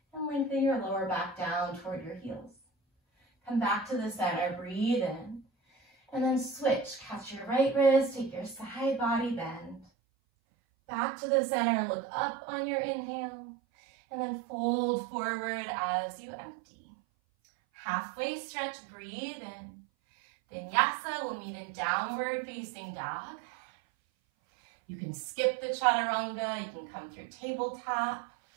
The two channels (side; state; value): left; drops out; at 9.9 s